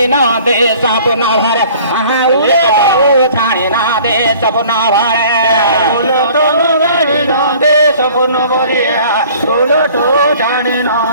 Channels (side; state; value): both; inverted; correlation -0.50